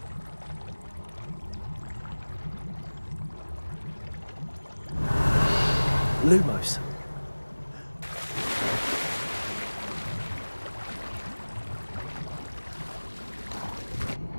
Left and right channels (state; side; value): inverted; both; correlation -1.00